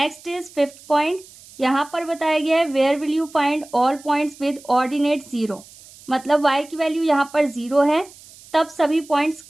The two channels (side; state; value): right; noise; hiss, 22 dB below the sound